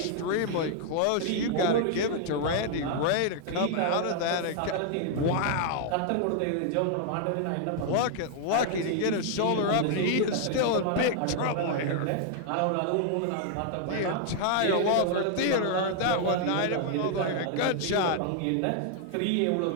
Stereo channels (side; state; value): both; different; correlation 0.00